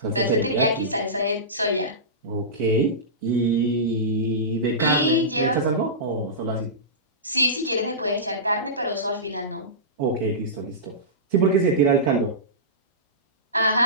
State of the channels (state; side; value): normal; both; correlation -0.19